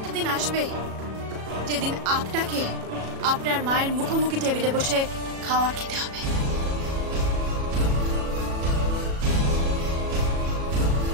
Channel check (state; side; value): late; left; 37 ms